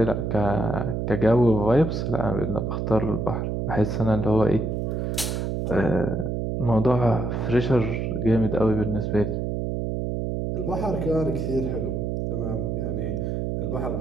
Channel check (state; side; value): noise; right; hum, 1 dB below the sound